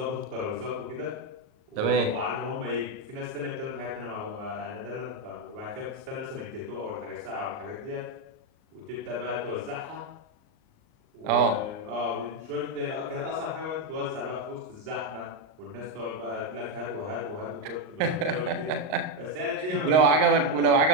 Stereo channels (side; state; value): left; late; 38 ms